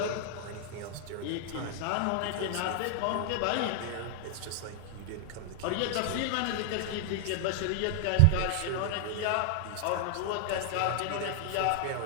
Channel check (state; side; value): different; both; correlation 0.00